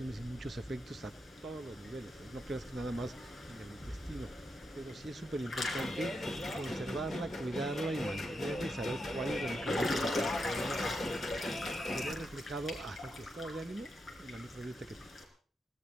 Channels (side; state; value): both; normal; correlation 0.84